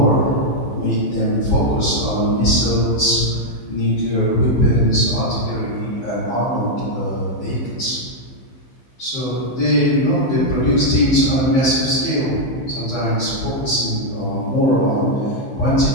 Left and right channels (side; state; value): right; late; 15 ms